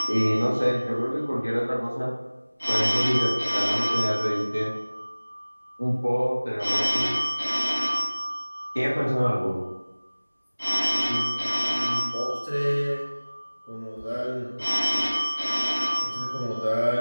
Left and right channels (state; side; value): inverted; both; correlation -1.00